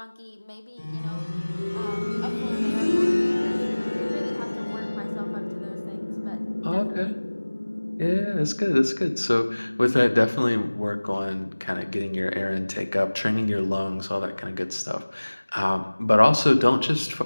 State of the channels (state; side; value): inverted; both; correlation -1.00